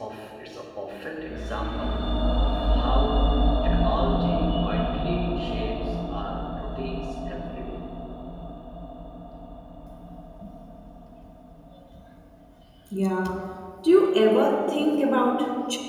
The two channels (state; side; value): identical; both; correlation 1.00